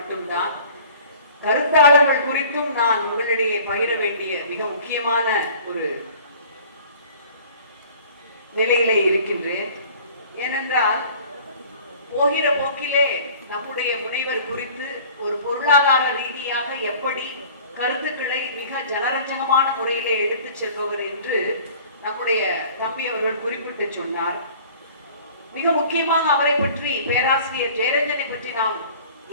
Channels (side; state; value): both; inverted; correlation -0.48